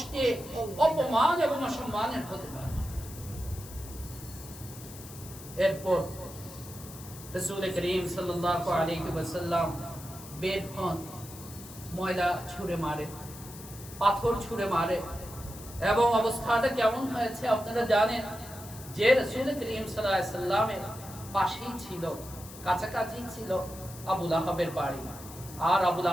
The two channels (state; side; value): noise; left; hiss, 16 dB below the sound